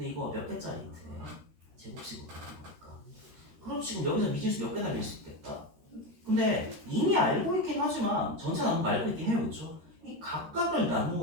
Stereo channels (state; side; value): late; left; 13 ms